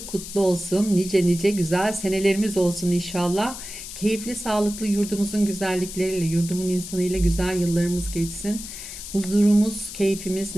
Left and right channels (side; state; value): left; noise; hiss, 10 dB below the sound